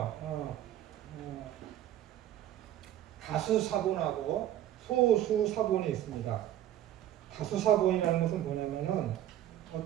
다수사본하고 소수사본이 있습니다. 다수사본이라는 것은 뭐냐면은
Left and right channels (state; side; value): quieter; left; 12.2 dB